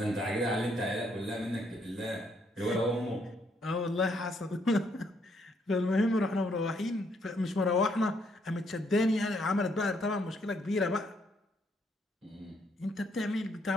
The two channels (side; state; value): both; normal; correlation 0.72